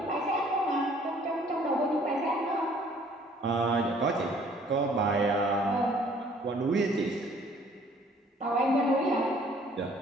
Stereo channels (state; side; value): normal; both; correlation 0.58